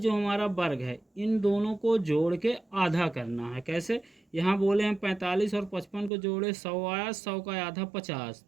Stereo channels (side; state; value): left; drops out; at 6.1 s